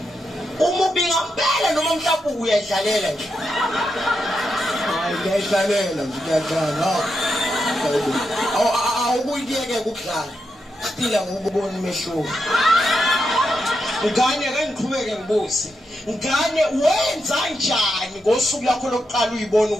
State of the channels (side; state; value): both; normal; correlation 0.85